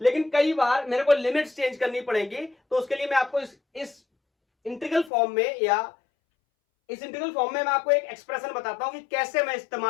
लेकिन कई बार मेरे को लिमिट्स चेंज करनी पड़ेगी, तो उसके लिए मैं आपको इस इंटीग्रल फॉर्म में, या इस इंटीग्रल फॉर्म में मैं आपको एक एक्सप्रेशन बताता हूं कि कैसे मैं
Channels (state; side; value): drops out; right; at 5.1 s